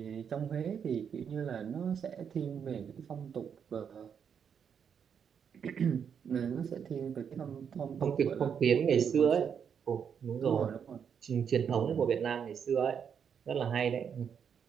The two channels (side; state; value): left; quieter; 7.4 dB